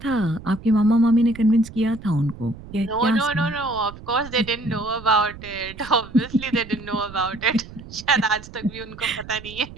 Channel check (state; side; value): noise; right; rumble, 16 dB below the sound